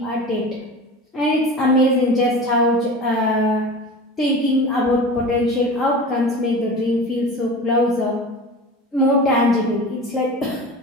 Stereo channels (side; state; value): both; normal; correlation 0.34